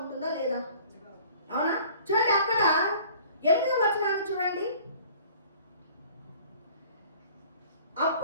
లేదా? అవునా? చూడండి, అక్కడ 8వ వచనాన్ని చూడండి.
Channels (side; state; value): both; inverted; correlation -0.50